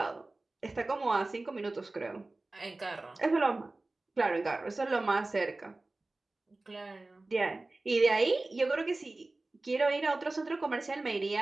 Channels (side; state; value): left; quieter; 3.1 dB